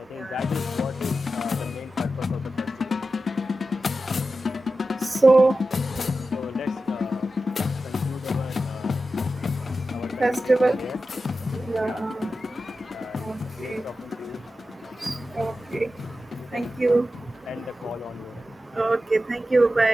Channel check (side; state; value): both; normal; correlation 0.92